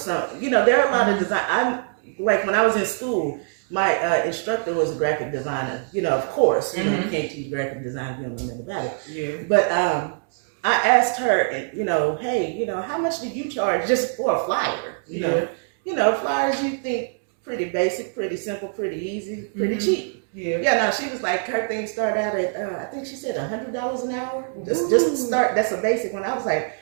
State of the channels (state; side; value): silent; left; 63 dB below the other